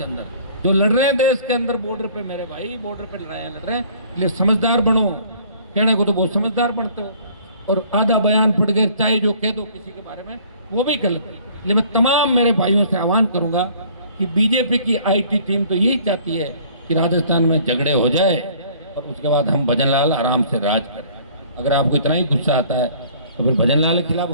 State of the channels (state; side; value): inverted; both; correlation -0.54